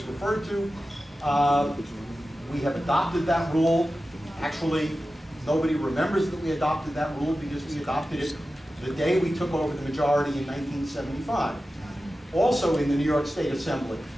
referred to. We have adopted that rule. Actually, nobody remembers that we adopted that rule because we adopted it the day we took over the majority in 1975. Also in the New York State Assembly.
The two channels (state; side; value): normal; both; correlation 0.94